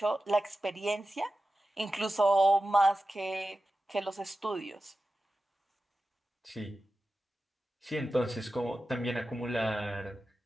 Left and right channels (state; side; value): normal; both; correlation 0.93